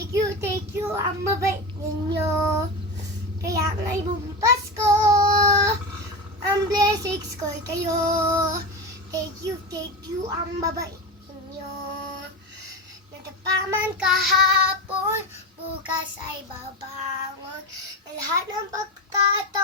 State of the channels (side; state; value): both; normal; correlation 0.21